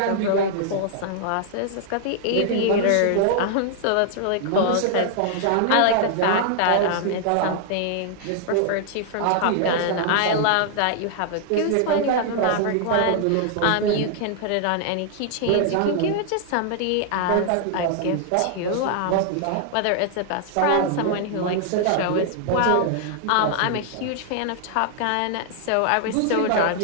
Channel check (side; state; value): both; different; correlation -0.01